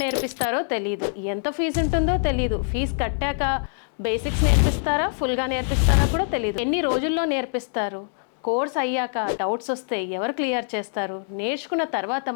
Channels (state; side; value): silent; right; digital silence